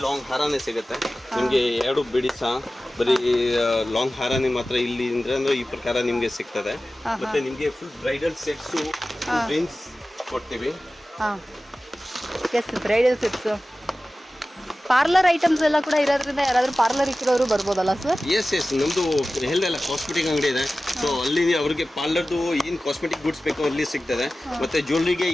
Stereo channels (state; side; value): normal; both; correlation 0.96